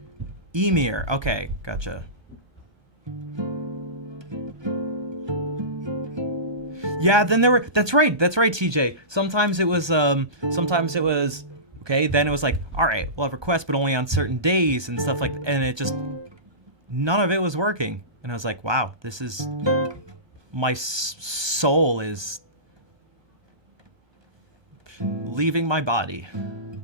Emir, okay, gotcha. Yeah, then that's right, TJ. Sometimes it was, okay, then it was like, all right, we'll have requests, but only on certain days and stuff like that. And it just, none of it was working. And I was like, wow, this is, my soul is leaving my body.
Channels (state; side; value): late; left; 1.2 ms